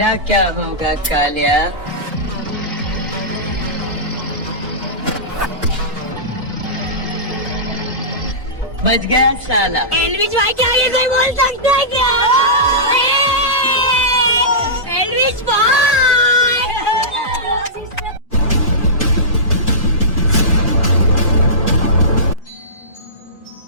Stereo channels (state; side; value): normal; both; correlation -0.18